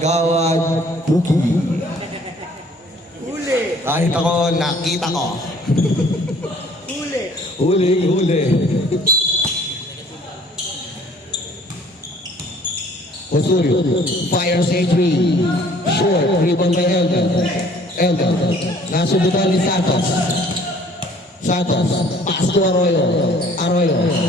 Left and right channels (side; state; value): both; normal; correlation 0.56